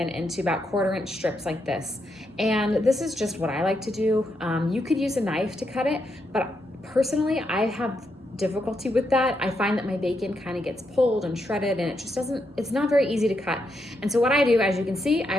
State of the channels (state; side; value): normal; both; correlation 0.81